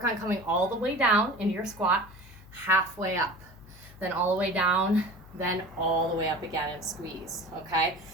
on coming all the way down into your squat, halfway up, then all the way down, then all the way up again and squeeze, okay?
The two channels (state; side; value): noise; left; hum, 21 dB below the sound